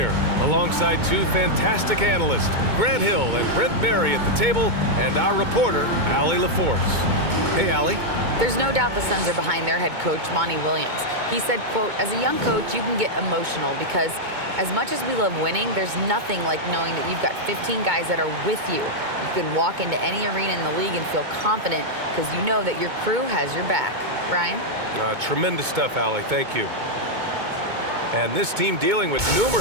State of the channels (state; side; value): late; left; 2.2 ms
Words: alongside two fantastic analysts, Grant Hill and Brent Berry at the table, and our reporter, Allie LaForce. Hey, Allie. There's no doubt the Suns are behind their head coach, Monty Williams. He said, quote, as a young coach, you can get emotional because as much as we love winning, there's nothing like knowing that you've got 15 guys that are with you. You can walk into any arena in the league and feel confident because you know that your crew has your back. Brian? Tremendous stuff, Allie. Thank you. And this team dealing with